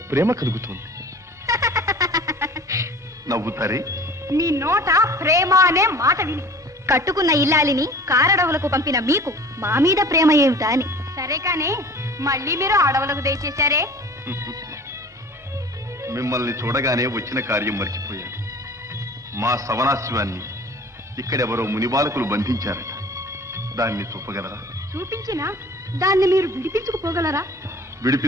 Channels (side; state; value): both; normal; correlation 0.44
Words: ప్రేమ కలుగుతుంది. నవ్వుతారే? మీ నోట ప్రేమ అనే మాట విని కట్టుకున్న ఇల్లాలిని కారడవులకు పంపిన మీకు మా మీద ప్రేమ ఏమిటా అని. సరే కానీ మళ్ళీ మీరు అడవులకు దయచేశారే. మిమ్మల్ని చూడగానే వచ్చిన కార్యం మర్చిపోయాను. మా సవనాశ్వాన్ని ఇక్కడెవరో మునిబాలకులు బంధించారట. దాన్ని చూపగలరా? చూపించినా దాన్ని మీరు విడిపించుకుపోగలరా?